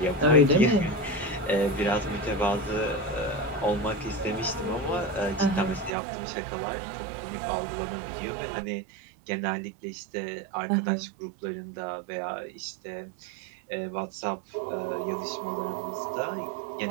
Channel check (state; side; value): drops out; left; at 5.9 s